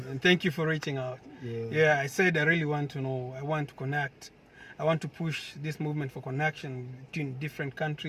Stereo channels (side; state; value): both; identical; correlation 1.00